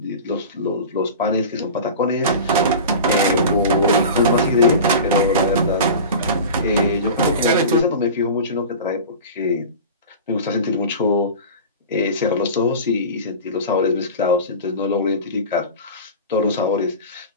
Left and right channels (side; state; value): both; inverted; correlation -0.33